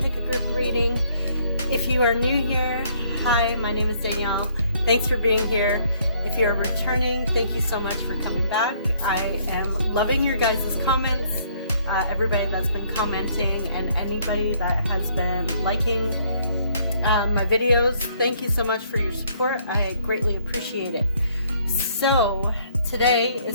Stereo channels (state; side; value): inverted; both; correlation -0.65